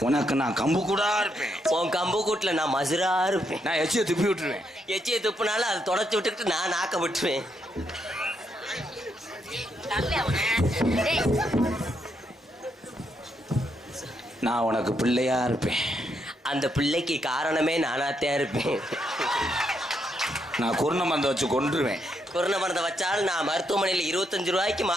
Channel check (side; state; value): both; normal; correlation 0.78